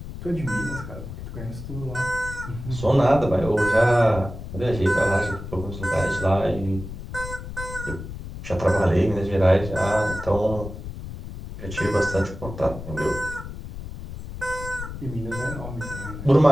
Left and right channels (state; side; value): noise; left; rumble, 10 dB below the sound